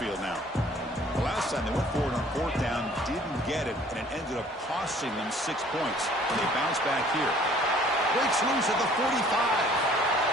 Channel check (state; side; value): normal; both; correlation 0.55